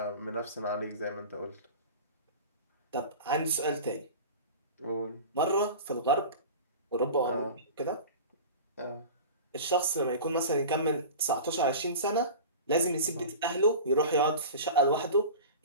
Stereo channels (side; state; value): both; inverted; correlation -0.34